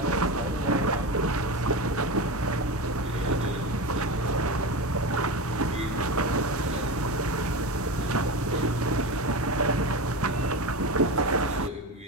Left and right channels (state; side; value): normal; both; correlation 0.22